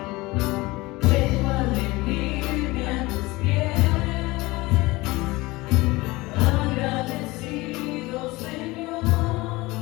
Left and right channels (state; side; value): quieter; right; 21.4 dB